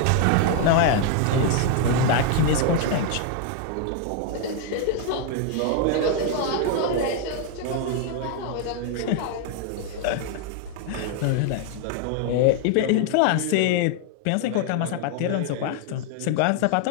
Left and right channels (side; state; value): both; different; correlation 0.00